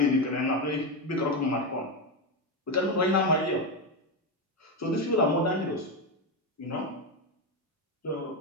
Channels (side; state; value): both; normal; correlation 0.11